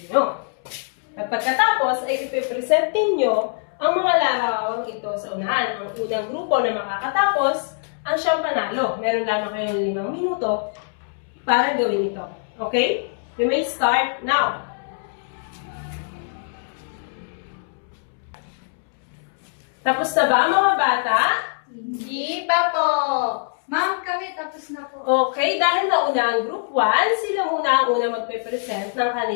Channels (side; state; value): right; silent; 63 dB below the other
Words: At pagkatapos ay ipipresent ninyo ang mga larawang ito sa unahan. Ang unang grupo na makakatapos ang siyang panalo. Meron lamang kayong 5 minuto para gawin ito. Okay? You may start now. Tapos na ba mga bata? Hindi pa po! Ma'am, kami tapos na po. Okay, dahil nauna ang group 1, sila muna ang una magpe-present ng